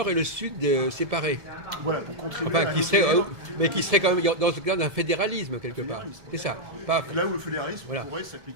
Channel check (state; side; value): late; left; 1.7 ms